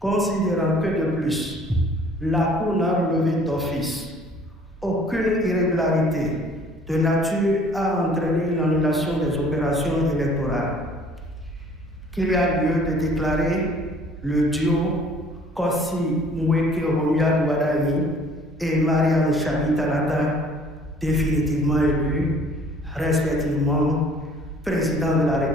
que de plus, la Cour n'a relevé d'office aucune irrégularité de nature à entraîner l'annulation des opérations électorales, qu'il y a lieu de déclarer le duo Kossi Mweke Romia Douadaï et Mariam Chabi Talata définitivement élus, respectivement président de la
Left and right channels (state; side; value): normal; both; correlation 0.55